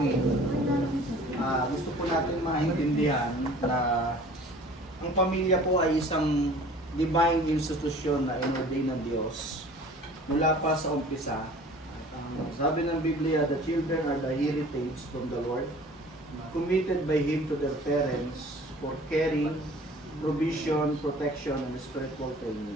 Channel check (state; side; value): normal; both; correlation 0.48